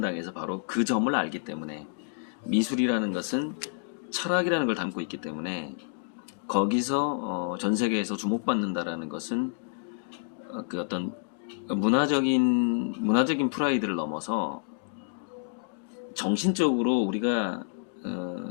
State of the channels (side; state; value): right; silent; digital silence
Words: 바로 그 점을 알기 때문에, 미술이라는 것은 철학이라는 걸 담고 있기 때문에 거기서 전 세계에서 주목받는다라는 것은 그 어떤 문화적인 프라이드를 넘어서 정신적으로 우리가